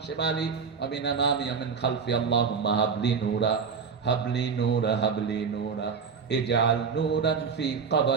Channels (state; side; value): quieter; left; 5.9 dB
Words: শিমালি ওয়া মিন আমামি ওয়া মিন খালফি। আল্লাহুম্মা হাবলি নূরা হাবলি নূরা হাবলি নূরা ইজআল নূরান ফি